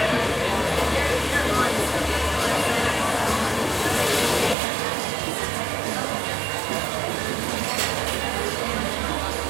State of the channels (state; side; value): drops out; left; at 4.5 s